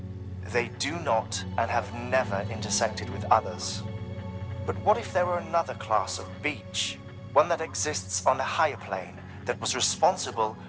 They do not and have never intersected with others. But what if there were another class of beach, one that exists on a higher plane, that was responsible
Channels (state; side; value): identical; both; correlation 1.00